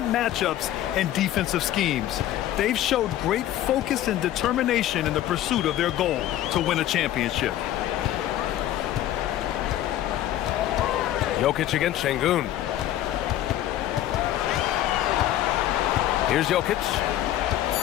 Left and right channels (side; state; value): right; quieter; 12.9 dB